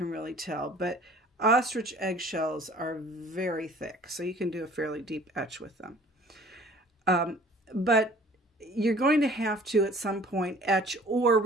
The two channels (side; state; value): both; normal; correlation 0.51